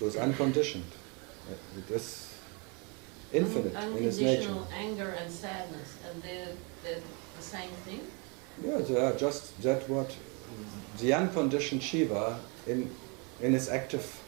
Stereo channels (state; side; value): quieter; left; 32.6 dB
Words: it's unconditioned. It is infinite in its nature. Unconditional anger and sadness, and they're the same thing? Yeah, they are just that what the unconditioned Shiva in its active